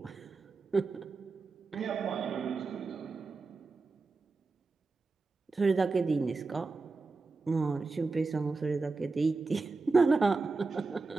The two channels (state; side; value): quieter; left; 3.9 dB